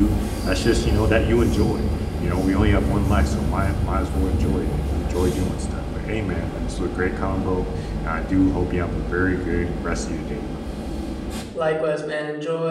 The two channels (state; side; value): identical; both; correlation 1.00